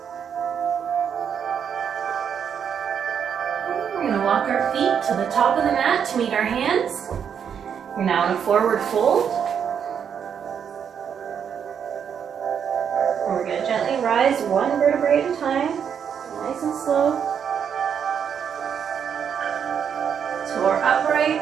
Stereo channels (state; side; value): quieter; left; 7.8 dB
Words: Walk our feet to the top of the mat to meet our hands. You're now in a forward fold. And we're going to gently rise one vertebrae at a time, nice and slow. Tore